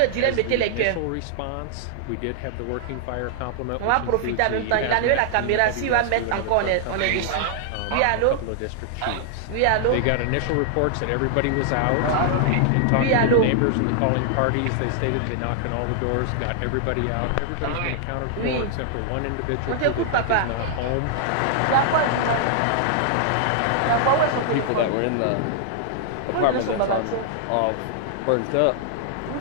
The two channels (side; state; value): both; different; correlation -0.01